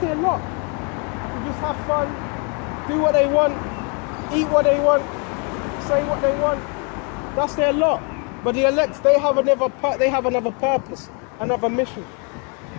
lot. They just have fun, do what they want, eat what they want, say what they want. That's their lot. But the elect, they have another purpose, another mission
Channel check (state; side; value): quieter; right; 35.7 dB